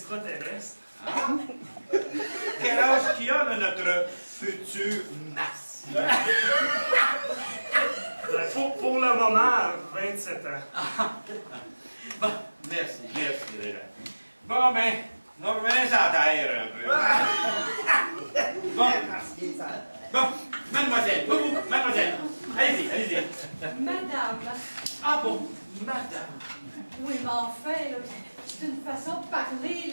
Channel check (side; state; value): both; inverted; correlation -1.00